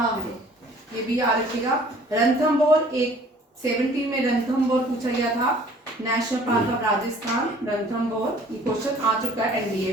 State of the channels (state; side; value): normal; both; correlation 0.53